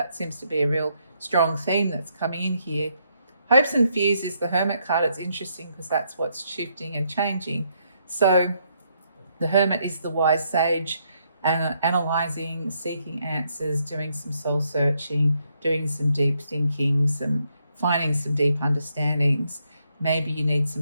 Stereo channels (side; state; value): both; inverted; correlation -0.75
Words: seems to be a real strong theme that's coming in here. Hopes and fears is the Hermit card. It's interesting because that's what's shifting and changing. So the Hermit is the wise sage, and analyzing, seeking answers, doing some soul searching, doing some deep thinking, finding some deep understandings. maybe you need